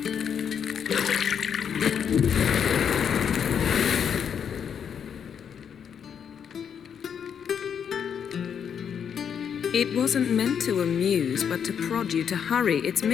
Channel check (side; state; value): right; quieter; 7.7 dB